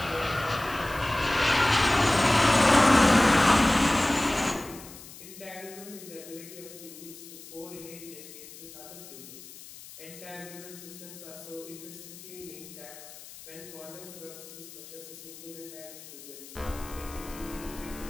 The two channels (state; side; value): noise; left; hiss, 16 dB below the sound